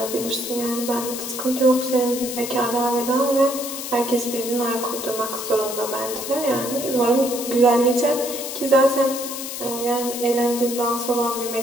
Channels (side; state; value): left; noise; hiss, 7 dB below the sound